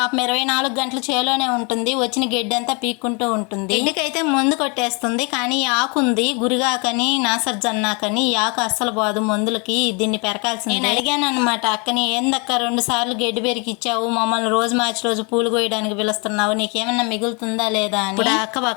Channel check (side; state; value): right; quieter; 32.1 dB